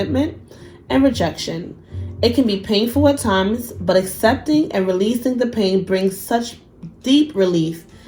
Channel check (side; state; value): both; identical; correlation 1.00